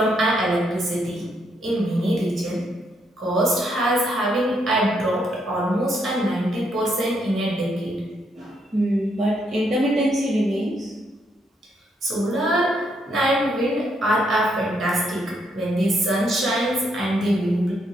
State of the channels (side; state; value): both; normal; correlation 0.75